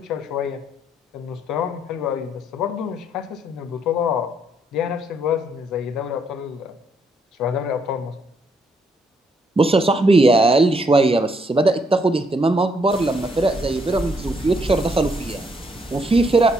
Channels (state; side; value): normal; both; correlation 0.72